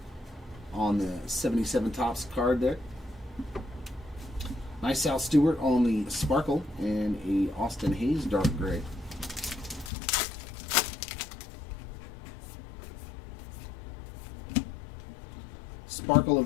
on the 77 Topps card there. Nice Sal Stewart on the Sparkle and a Austin Hayes Dark Gray. Sparkle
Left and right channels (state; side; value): drops out; right; at 9.9 s